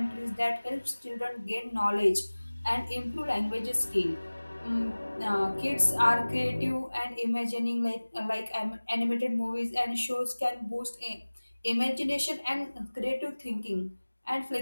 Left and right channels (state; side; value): inverted; both; correlation -1.00